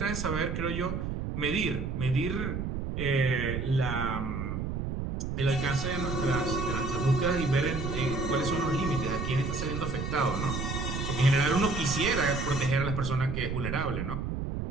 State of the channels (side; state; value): right; noise; rumble, 3 dB below the sound